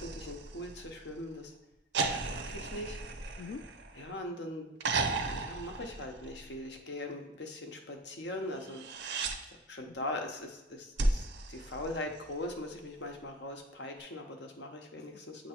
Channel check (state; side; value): normal; both; correlation 0.28